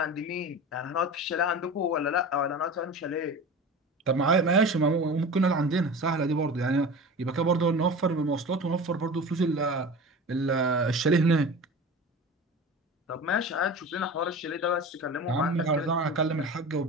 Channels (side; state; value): both; normal; correlation 0.34